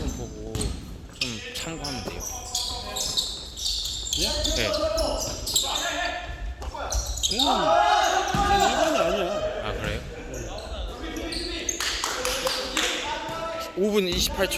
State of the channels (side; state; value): both; identical; correlation 1.00